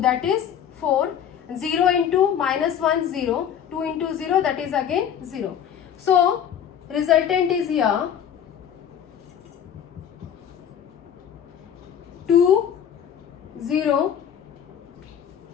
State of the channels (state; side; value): quieter; right; 8.9 dB